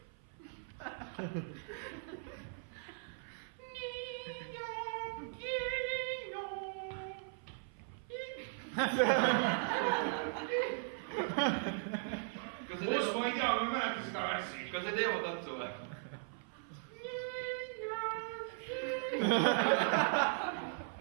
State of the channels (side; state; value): left; silent; 52 dB below the other